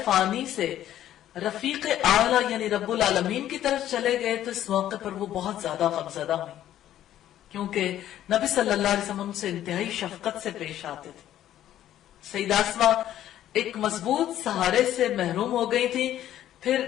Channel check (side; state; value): right; quieter; 12.1 dB